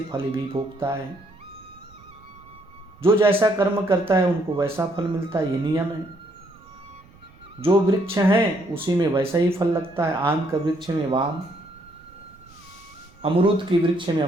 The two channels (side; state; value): right; noise; rumble, 26 dB below the sound